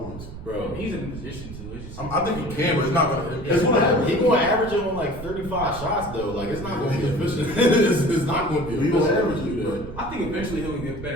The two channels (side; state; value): right; noise; rumble, 12 dB below the sound